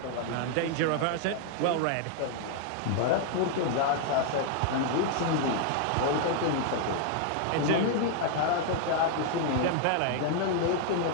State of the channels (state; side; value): different; both; correlation 0.00